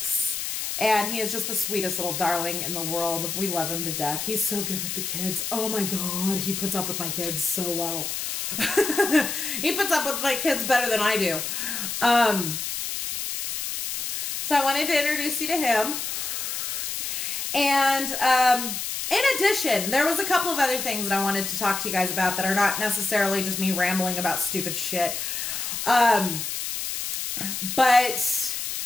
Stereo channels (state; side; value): noise; left; hiss, 3 dB below the sound